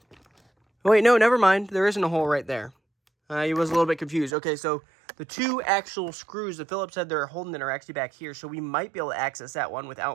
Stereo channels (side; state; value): left; drops out; at 4.3 s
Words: Oh, wait, no, never mind. There isn't a hole right there. I was a little bit confused. Okay, so The two actual screws, the Phillips head they're holding it, are actually back here, so we might be able to access that one